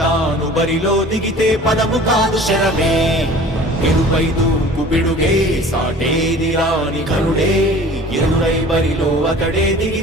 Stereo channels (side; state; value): both; normal; correlation 0.45